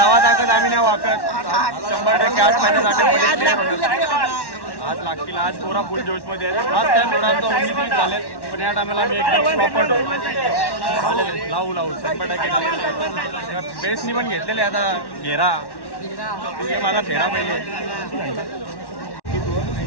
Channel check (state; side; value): late; right; 1.1 ms